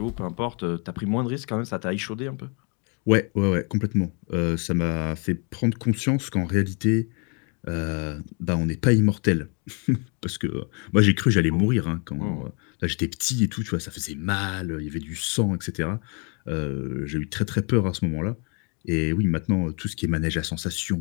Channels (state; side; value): quieter; right; 35.6 dB